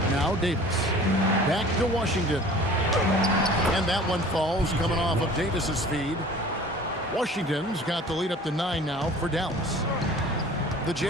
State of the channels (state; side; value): normal; both; correlation 0.45